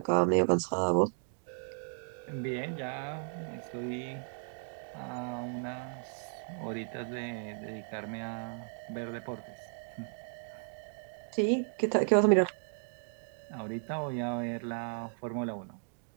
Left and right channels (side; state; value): left; silent; 55 dB below the other